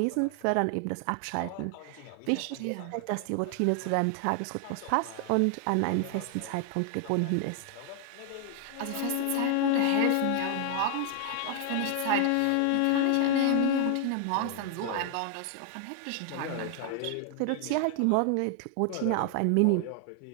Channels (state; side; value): different; both; correlation 0.00